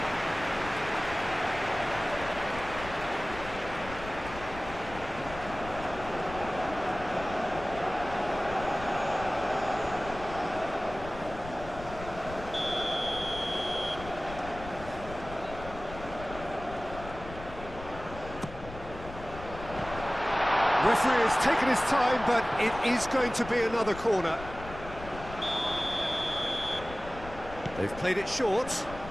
Referee has taken his time, but it is going to be another corner. They've played it short.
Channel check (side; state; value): left; noise; rumble, 13 dB below the sound